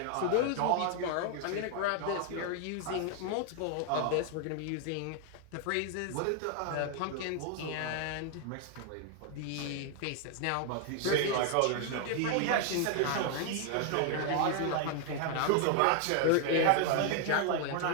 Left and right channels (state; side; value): different; both; correlation 0.00